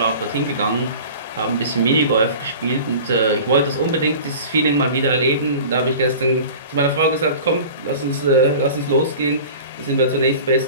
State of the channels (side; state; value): both; inverted; correlation -0.39